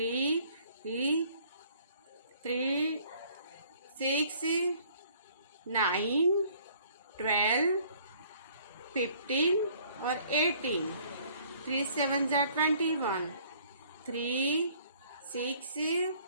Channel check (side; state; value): both; inverted; correlation -0.58